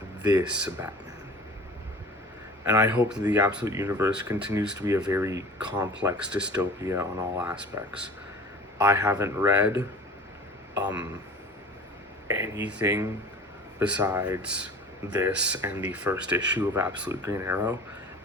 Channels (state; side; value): normal; both; correlation 0.40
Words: this Batman. And I hope that the Absolute Universe continues to be a very complex dystopia on all aspects. I haven't read anything besides this and the first issue of Absolute Green Arrow.